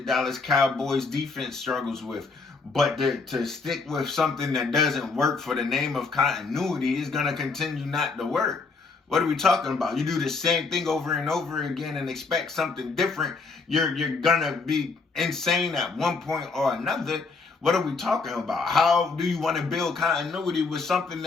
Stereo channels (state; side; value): quieter; right; 4.3 dB